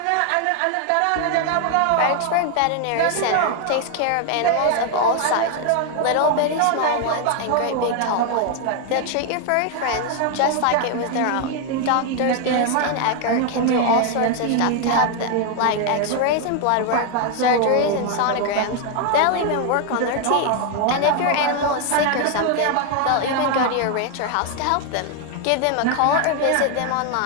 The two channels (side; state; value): both; different; correlation 0.01